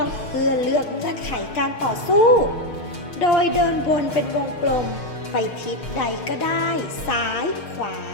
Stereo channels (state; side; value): late; right; 6.5 ms